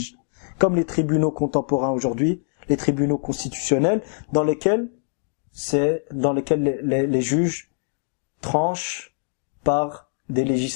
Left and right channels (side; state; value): right; silent; 63 dB below the other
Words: Comme les tribunaux contemporains aujourd'hui, les tribunaux constitutionnels dans lesquels les juges tranchent par des